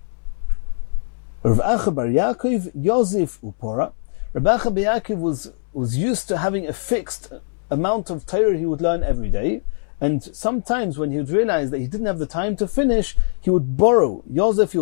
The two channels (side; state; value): right; silent; 65 dB below the other